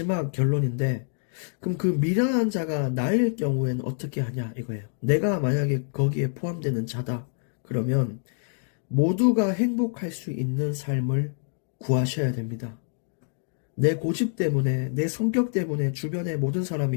결론인데, 그럼 그 미련한 자가 나일 경우에는 어떻게 하냐 이거예요. 내가 만약에 거기에 포함되는 자다. 그러면 모두가 행복할 수 있는 삶을 구하셔야 됩니다. 내 고집 때문에, 내 성격 때문에 주변의 모든 사람이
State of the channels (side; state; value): right; silent; 61 dB below the other